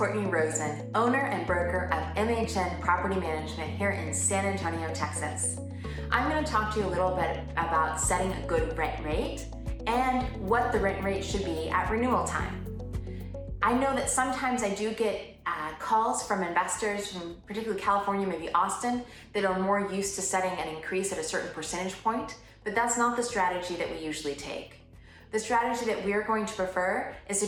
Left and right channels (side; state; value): both; identical; correlation 1.00